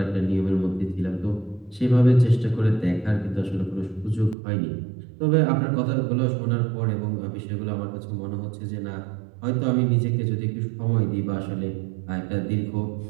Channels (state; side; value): drops out; left; at 4.4 s